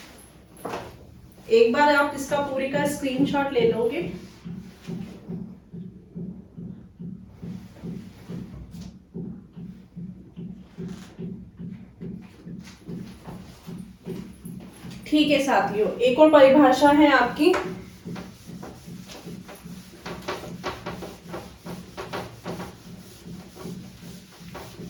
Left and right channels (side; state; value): both; identical; correlation 1.00